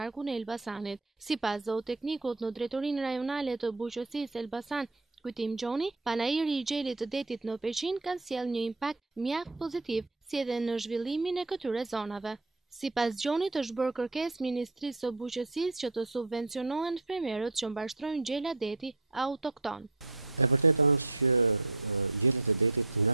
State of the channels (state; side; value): quieter; left; 3.1 dB